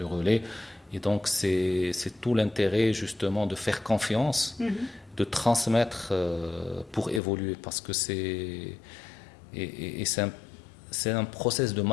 relais. Et donc, c'est tout l'intérêt, justement, de faire confiance, de transmettre pour évoluer, parce que c'est un process de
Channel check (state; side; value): drops out; right; at 7.2 s